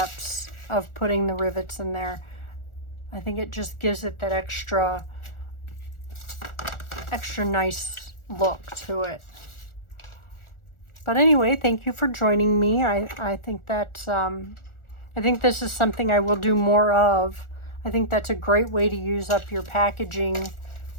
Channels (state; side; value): late; right; 1.4 ms